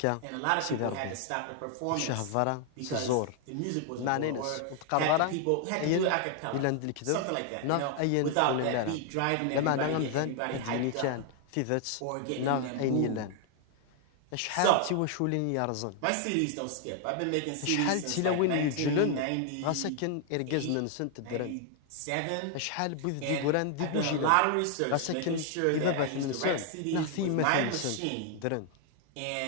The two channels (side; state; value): both; different; correlation 0.00